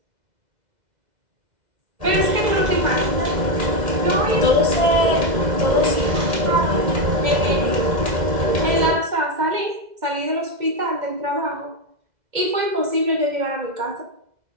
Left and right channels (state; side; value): late; left; 2.0 ms